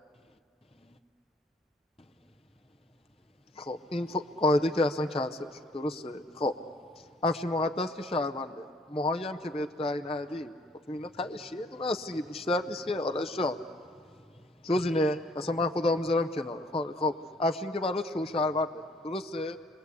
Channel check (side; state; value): both; normal; correlation 0.61